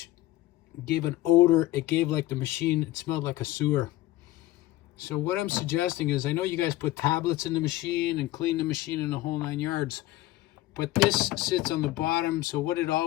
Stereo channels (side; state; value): right; quieter; 16.2 dB